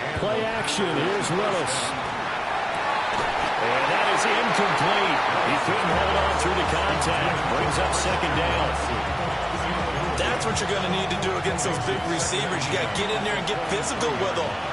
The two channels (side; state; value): both; identical; correlation 1.00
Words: Play action. Here's Willis. And that is incomplete. He couldn't hold on through the contact. Brings up 2nd down. That's what you're going to need to do against those big receivers. You got to get in there and get physical with them.